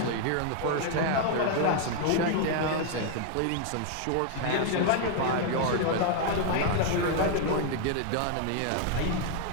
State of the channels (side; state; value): both; different; correlation 0.00